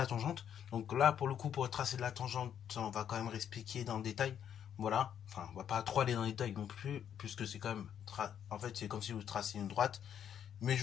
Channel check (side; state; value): right; quieter; 9.1 dB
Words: tangente. Donc là pour le coup pour tracer de la tangente, on va quand même expliquer dans le détail. Voilà. Enfin on va pas trop aller dans le détail non plus, puisque c'est quand même en fait c'est comme si vous tracez une droite. Mais je